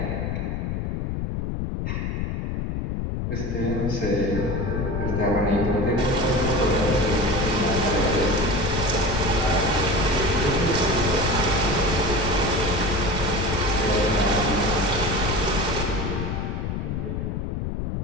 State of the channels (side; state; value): left; noise; rumble, 2 dB below the sound